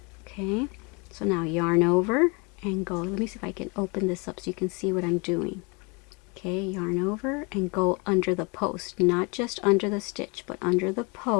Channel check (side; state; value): right; quieter; 29.8 dB